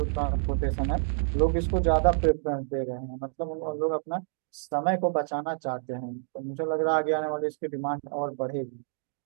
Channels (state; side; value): silent; left; digital silence